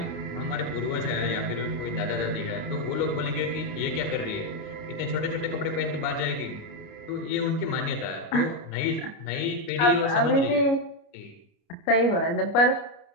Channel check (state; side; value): late; right; 29 ms